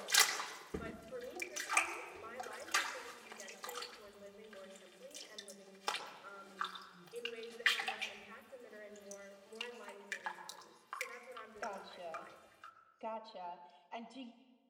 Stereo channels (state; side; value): identical; both; correlation 1.00